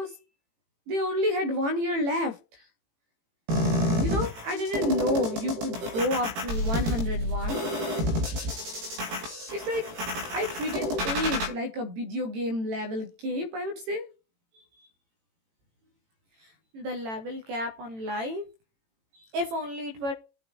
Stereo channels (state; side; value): late; left; 18 ms